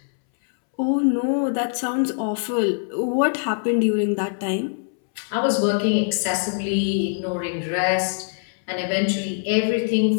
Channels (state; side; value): silent; right; 63 dB below the other